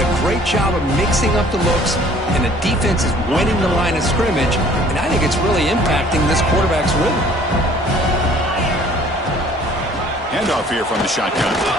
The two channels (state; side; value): normal; both; correlation 0.54